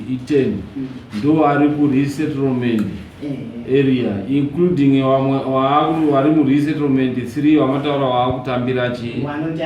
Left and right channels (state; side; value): identical; both; correlation 1.00